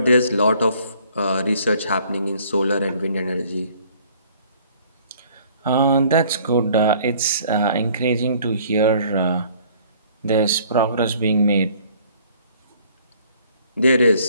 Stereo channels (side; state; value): both; inverted; correlation -0.57